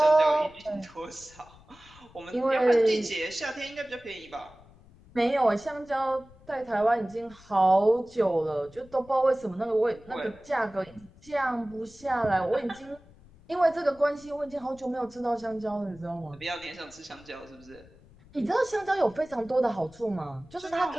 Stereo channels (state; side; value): noise; left; rumble, 24 dB below the sound